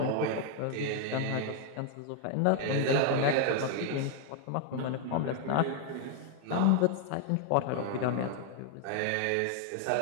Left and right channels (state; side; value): different; both; correlation 0.00